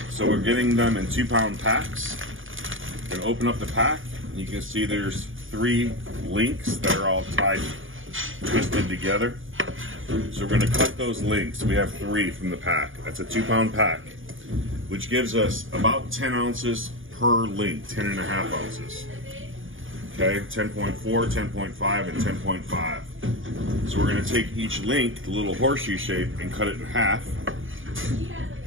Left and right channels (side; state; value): left; late; 0.58 ms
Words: So we're getting them in 2-pound packs. We're gonna open up the pack. You can see there's 3 links that are all tied, twisted together. So we're gonna cut those links. We have 3 from the pack. That's a 2-pound pack, which gives us about 10 ounces per link, 10.5 ounces. Okay, 10.4, 10.5, and 10.5. So we're gonna take each link, the little horseshoe shape, and cut it in half.